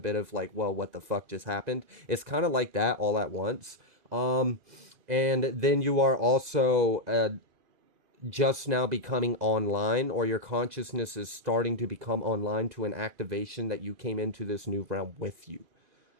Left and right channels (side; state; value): left; late; 2.0 ms